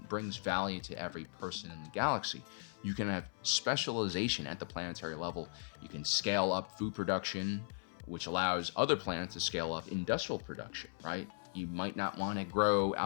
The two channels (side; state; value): right; silent; 53 dB below the other